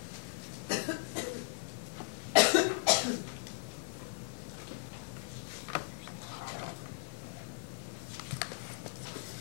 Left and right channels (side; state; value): right; silent; 53 dB below the other